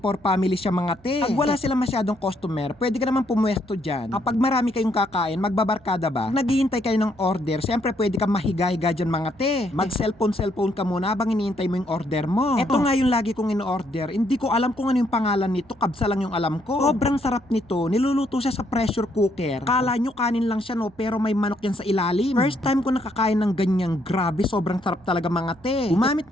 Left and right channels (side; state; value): right; noise; hum, 28 dB below the sound